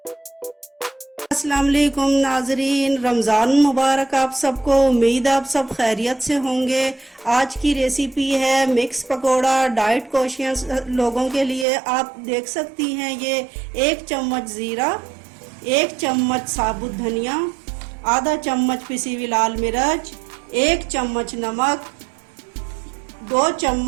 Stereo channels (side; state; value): left; drops out; at 11.7 s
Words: वालेकुम नाजरीन, रमज़ान मुबारक आप सबको। उम्मीद आप सब खैरियत से होंगे। आज की रेसिपी है मिक्स पकोड़ा, डाइट कॉन्शियस लोगों के लिए। आप देख सकती हैं ये 1 चम्मच ज़ीरा, 1 चम्मच साबुत धनिया, आधा चम्मच पिसी हुई लाल मिर्च, 1 चम्मच नमक, 2